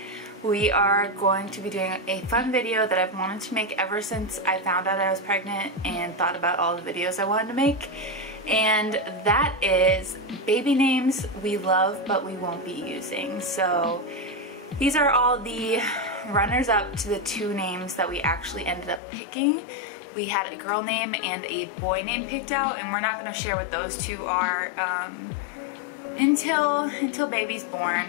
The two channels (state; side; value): drops out; right; at 19.0 s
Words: we are going to be doing a fun video that I've wanted to make ever since I found out I was pregnant and thought about all the videos I wanted to make. And that is baby names we love but we won't be using. So these are all the runners up to the two names that we actually ended up picking. We had a girl name and a boy name picked out, and we're not going to share what those two are until baby's